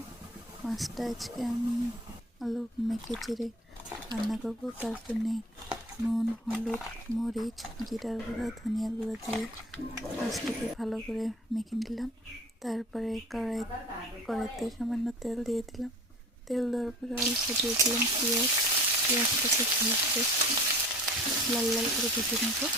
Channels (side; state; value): both; normal; correlation 0.42